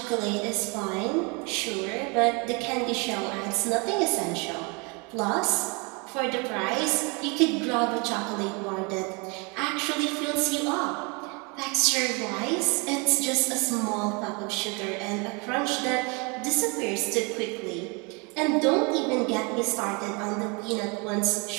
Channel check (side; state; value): left; quieter; 30.9 dB